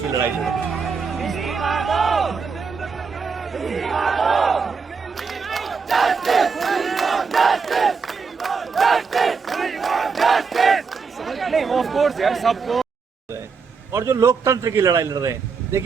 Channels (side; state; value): left; quieter; 5.3 dB